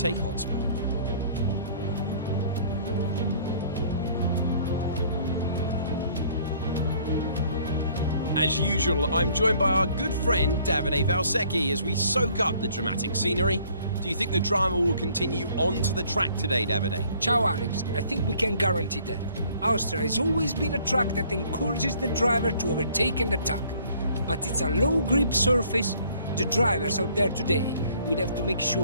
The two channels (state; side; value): inverted; both; correlation -0.58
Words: hotspot. As usual, I'm joined by our good friend Davide Valsecchi as we soak up the dramatic scenery. Do you think the drama will continue onto the track today, Davide? Ciao Alex, I think we can guarantee that. Austria has always been a track that encourages the driver to overtake and attack. But it's a low grip surface. The drivers out there today will have to make